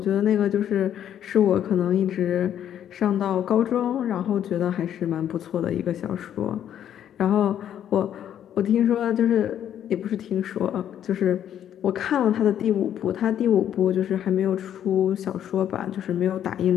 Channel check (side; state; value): right; quieter; 10.2 dB